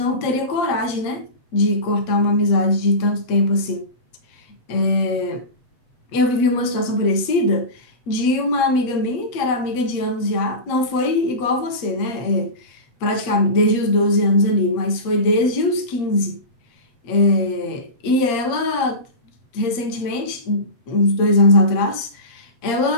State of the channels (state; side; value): late; right; 8.5 ms